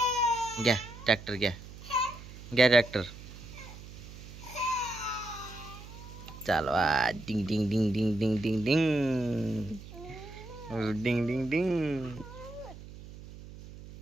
घ्या ट्रॅक्टर, घ्या घ्या ट्रॅक्टर. चालवा. डिंग डिंग डिंग डिंग डिंग डिंग डिंग डिंग डिंग डिंग.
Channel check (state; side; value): noise; right; hum, 15 dB below the sound